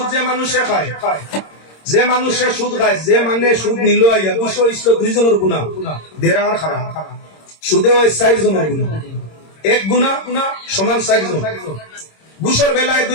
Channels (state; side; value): late; right; 26 ms